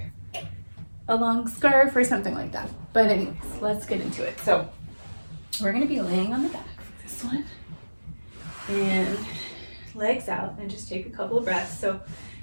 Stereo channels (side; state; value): both; inverted; correlation -1.00